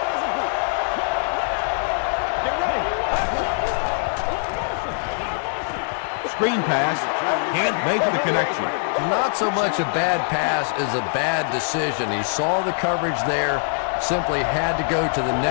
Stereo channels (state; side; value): silent; right; 57 dB below the other